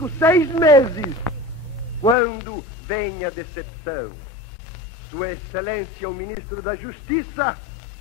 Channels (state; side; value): drops out; right; at 2.1 s